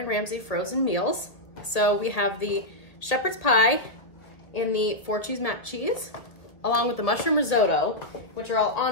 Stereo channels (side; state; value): right; late; 1.5 ms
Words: Ramsay frozen meals. So we have the shepherd's pie and the 4-cheese mac cheese, along with the mushroom risotto, which are all